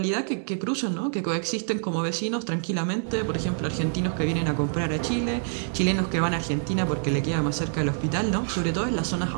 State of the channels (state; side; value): silent; left; 61 dB below the other